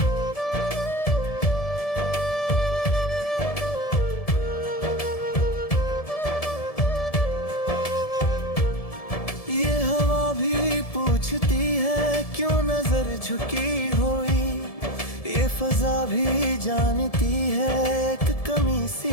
पूछती है क्यों नजर झुकी हुई, ये फजा भी जानती है एक कमी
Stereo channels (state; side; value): late; right; 1.7 ms